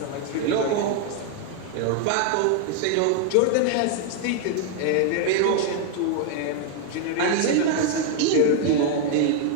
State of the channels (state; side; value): different; both; correlation 0.00